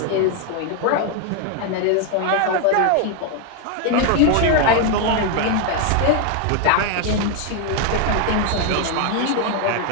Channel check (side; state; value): both; different; correlation 0.01